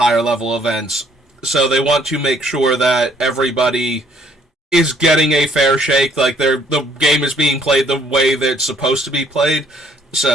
level events. So they want to make sure that everybody is getting a fair shake, like the game is being played the way that it's supposed to be played.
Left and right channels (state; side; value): normal; both; correlation 0.63